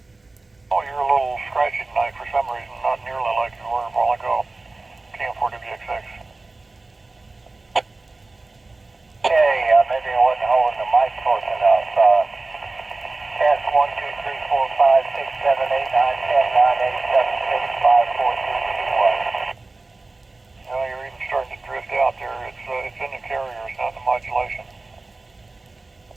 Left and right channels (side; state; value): left; quieter; 3.3 dB